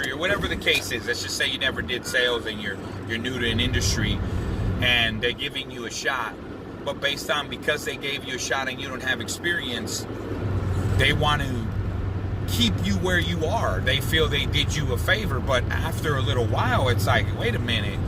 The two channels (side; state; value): both; identical; correlation 1.00